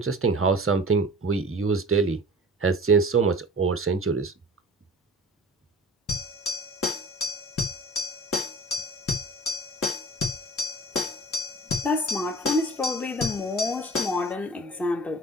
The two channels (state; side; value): normal; both; correlation 0.41